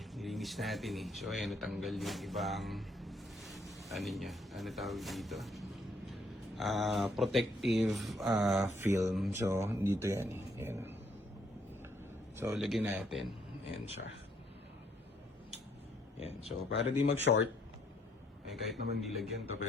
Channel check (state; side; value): normal; both; correlation 0.69